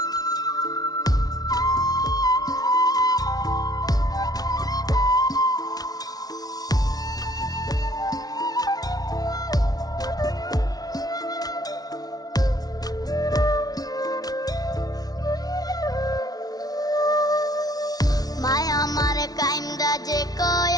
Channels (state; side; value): late; right; 0.19 ms